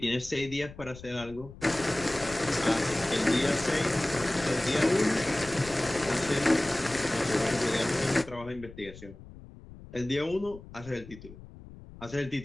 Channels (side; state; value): left; noise; rumble, 17 dB below the sound